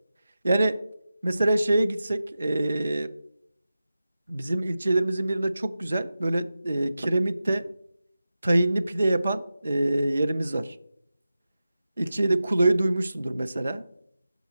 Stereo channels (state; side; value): inverted; both; correlation -0.93